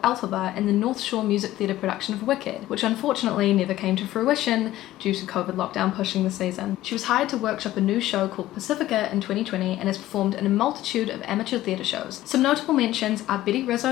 Elphaba in the North Shore Music Theatre production of Wicked, which unfortunately never came to fruition due to COVID lockdown pushing the season. She was hired to workshop a new show called Pacifica in 2020 and has performed in a multitude of amateur theatre shows. Some notable mentions are Betty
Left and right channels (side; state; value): right; quieter; 14.9 dB